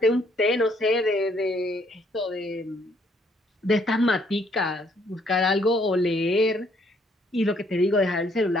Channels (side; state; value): both; normal; correlation 0.67